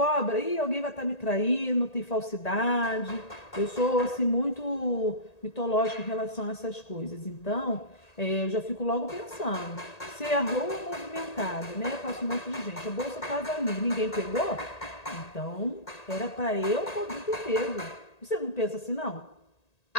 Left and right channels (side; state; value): right; late; 1.8 ms